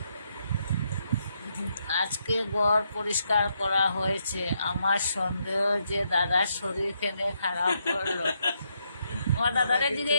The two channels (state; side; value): inverted; both; correlation -0.78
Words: আজকে ঘর পরিষ্কার করা হয়েছে। আমার সন্দেহ যে দাদার শরীর কেনে খারাপ করলো। তোমার দাদারে